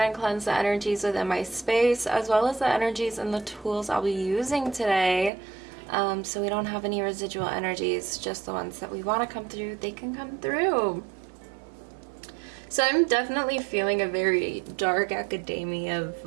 and cleansed the energies within my space, as well as the energies and the tools I'll be using today. So we don't have any residual energies, just the ones that we want to come through, they can come through. So I'm definitely feeling a very dark academia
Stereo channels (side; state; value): left; drops out; at 5.3 s